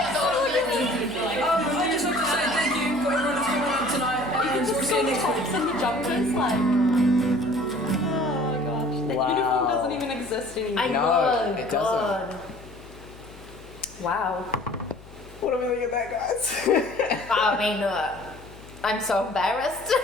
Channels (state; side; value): noise; left; hum, 20 dB below the sound